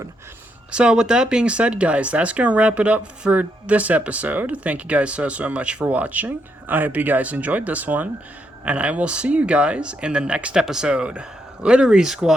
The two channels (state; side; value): normal; both; correlation 0.78